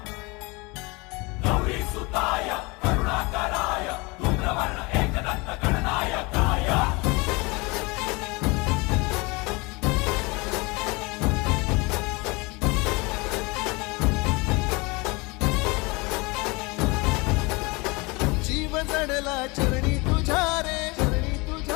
गौरी सुताय करुणाकराय धूम्रवर्ण एकदंत गणनायकाय जीव जडला चरणी तुझ्या रे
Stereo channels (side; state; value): right; quieter; 26.3 dB